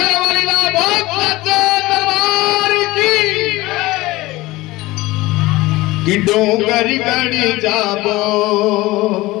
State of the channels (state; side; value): quieter; right; 19.5 dB